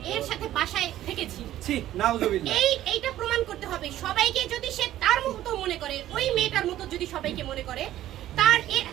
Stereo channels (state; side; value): quieter; left; 13.3 dB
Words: এর সাথে বাসায় থেকেছি। এইটা প্রমাণ করতে হবে সবাইকে। যদি সে তার মতো মনে করে, ওই মেয়েটার মতো যদি সবাইকে মনে করে, তার